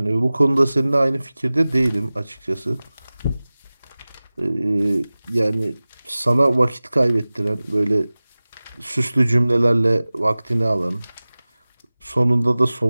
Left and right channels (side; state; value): both; inverted; correlation -0.98